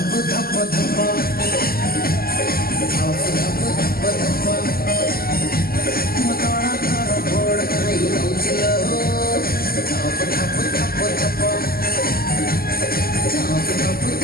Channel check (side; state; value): right; late; 0.43 ms